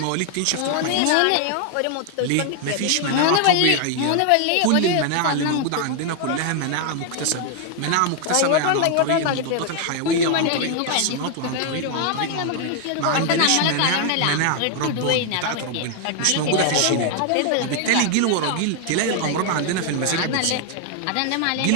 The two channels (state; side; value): different; both; correlation 0.00